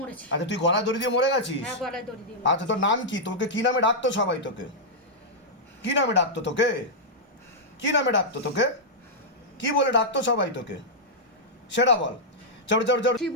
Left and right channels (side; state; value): both; normal; correlation -0.08